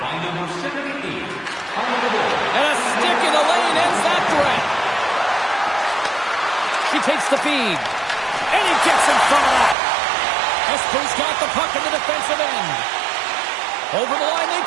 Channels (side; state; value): left; drops out; at 9.8 s